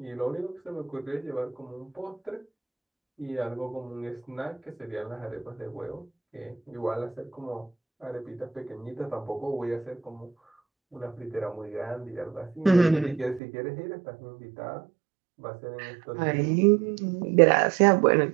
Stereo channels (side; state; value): left; drops out; at 13.4 s